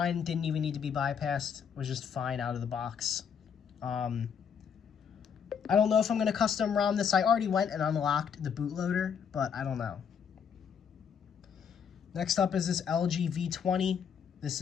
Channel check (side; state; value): right; quieter; 7.2 dB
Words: didn't even need to be bypassed, was just fine out of the box. I don't know if I'm going to custom ROM this. I already went and unlocked the bootloader, but I don't know. Next up is this LG V20. This